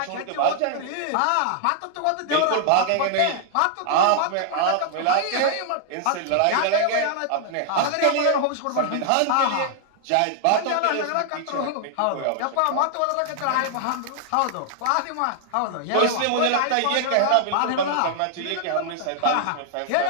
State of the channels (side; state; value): both; different; correlation 0.00